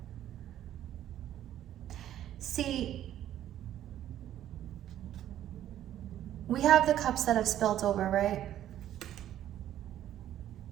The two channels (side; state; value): left; quieter; 11.8 dB